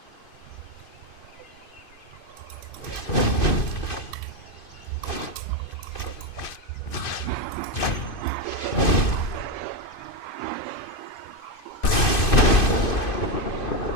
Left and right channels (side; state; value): right; late; 2.5 ms